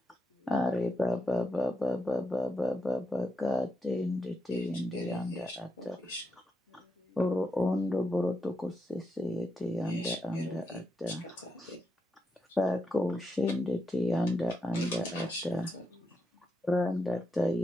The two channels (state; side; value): normal; both; correlation 0.84